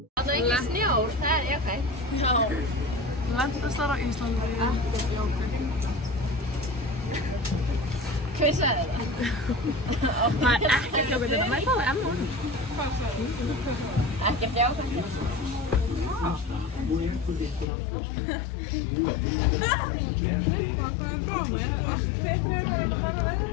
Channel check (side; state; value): right; drops out; at 17.7 s